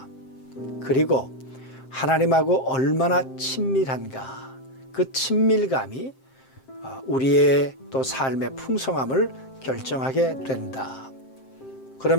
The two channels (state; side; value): late; right; 7.6 ms